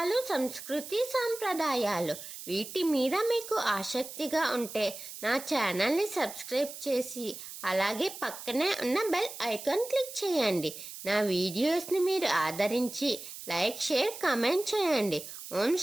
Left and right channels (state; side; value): noise; right; hiss, 12 dB below the sound